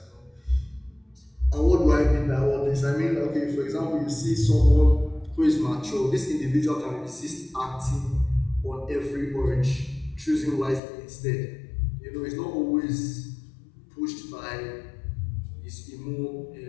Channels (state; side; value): drops out; right; at 10.8 s